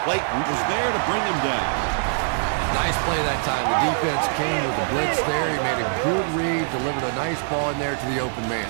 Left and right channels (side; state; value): left; silent; digital silence